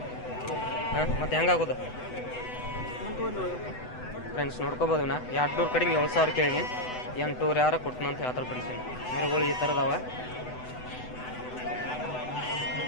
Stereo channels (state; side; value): late; right; 8.0 ms